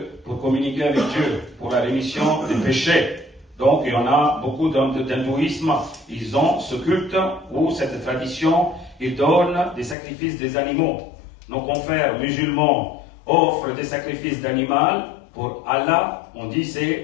pour communiquer avec Dieu, pour la rémission des péchés. Donc il y en a beaucoup d'hindouisme, ils ont ce culte ou cette tradition, ils donnent des sacrifices des animaux. Nos confrères musulmans offrent des sacrifices d'animal pour Allah, on dit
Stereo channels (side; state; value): right; drops out; at 10.0 s